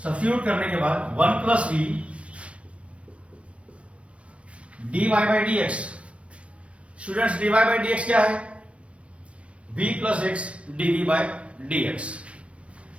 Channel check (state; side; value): late; left; 0.062 ms